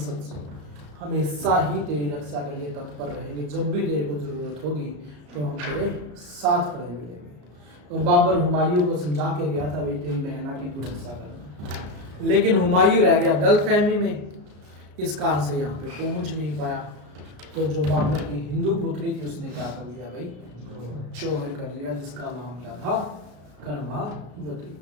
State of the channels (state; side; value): late; left; 34 ms